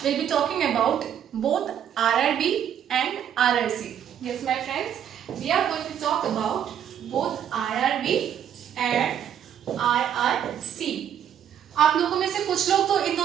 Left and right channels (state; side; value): quieter; left; 9.4 dB